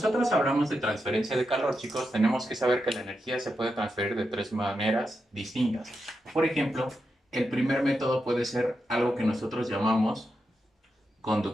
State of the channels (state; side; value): normal; both; correlation 0.87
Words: hablamos de transferencia de calor, chicos, tenemos que saber que la energía se puede transferir de tres maneras distintas. Por ejemplo, el primer método puede ser algo que nosotros llamamos